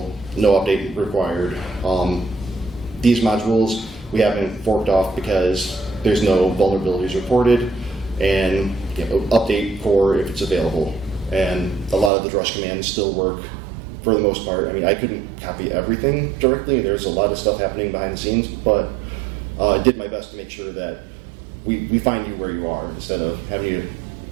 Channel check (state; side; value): drops out; left; at 12.1 s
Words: no update required. These modules we haven't forked off because there's no vulnerabilities reported, and update core if it's available. And a lot of the drush commands still work for the most part. I mean, I couldn't copy everything directly. There's a lot of stuff happening behind the scenes, but I did my best to make sure that we find you where you are instead of having